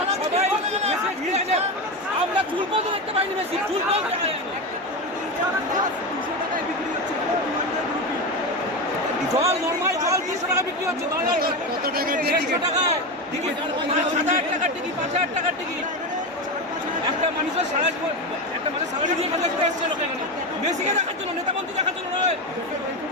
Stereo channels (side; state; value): both; normal; correlation 0.17